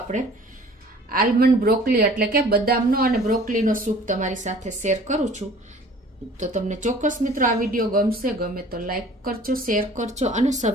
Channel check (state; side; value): normal; both; correlation 0.49